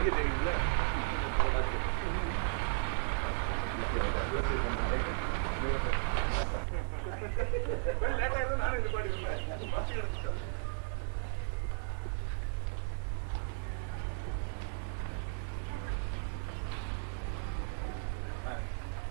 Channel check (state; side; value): silent; left; 54 dB below the other